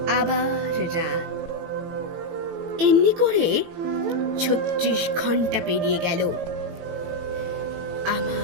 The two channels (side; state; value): left; late; 18 ms